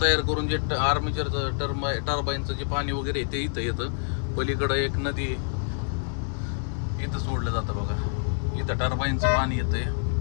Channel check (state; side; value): silent; right; digital silence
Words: तयार करून जे आर्मेचरचं टर्बाईनचं जे पाणी वगैरे ते इथं येतं. पलीकडं एक नदी इथं सोडलं जातं बघा, इथं टर्बाईनचं पाणी येतंय